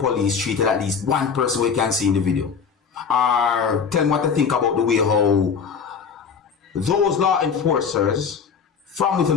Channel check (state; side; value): quieter; right; 6.2 dB